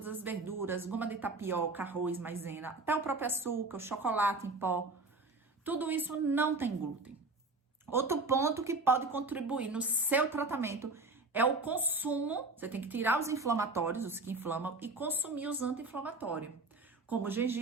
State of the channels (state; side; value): quieter; left; 3.3 dB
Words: as verduras, goma de tapioca, arroz, maisena, até o próprio açúcar, o chocolate em pó. Tudo isso não tem glúten. Outro ponto que pode contribuir no seu tratamento é o consumo. Você tem que tirar os inflamatórios, os que inflamam, e consumir os anti-inflamatórios, como o